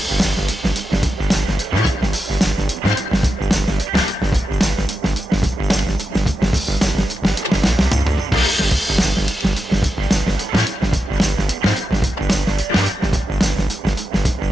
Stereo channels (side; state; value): both; normal; correlation 0.89